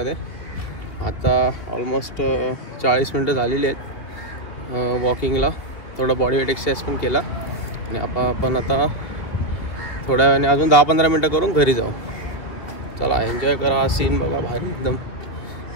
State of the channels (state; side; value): late; right; 2.6 ms